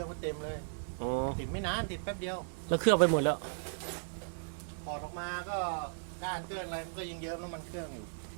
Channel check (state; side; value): silent; left; digital silence